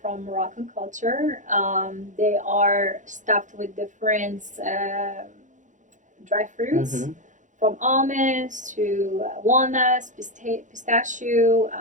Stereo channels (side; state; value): left; late; 0.36 ms